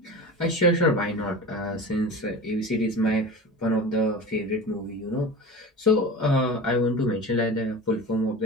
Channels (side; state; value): both; normal; correlation 0.32